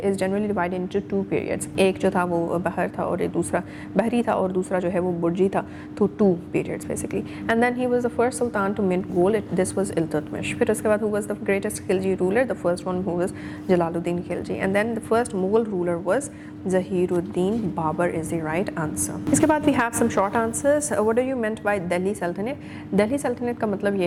is generally divided into two periods. एक जो था वो बहर था और एक दूसरा बहरी था और दूसरा जो है वो बुर्जी था, तो two periods basically. And then he was the first sultan to mint gold. This was Iltutmish. फिर उसके बाद who was the greatest Khilji ruler? The first one who was Jalaluddin Khilji. And then the first Mughal ruler was Zahiruddin Babur is the right answer. इसके बाद we have some short answers. What do you meant by Delhi Sultanate? Delhi Sultanate का मतलब ये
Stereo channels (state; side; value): identical; both; correlation 1.00